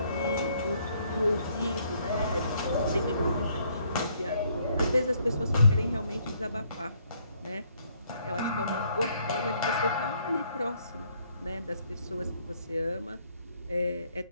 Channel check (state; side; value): inverted; both; correlation -0.68